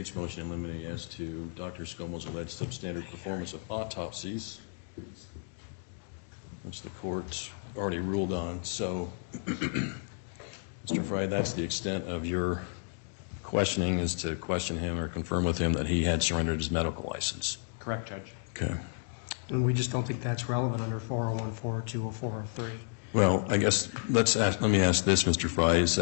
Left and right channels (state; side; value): silent; right; 56 dB below the other